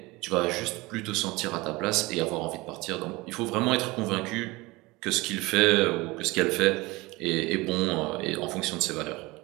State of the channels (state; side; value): quieter; left; 22.2 dB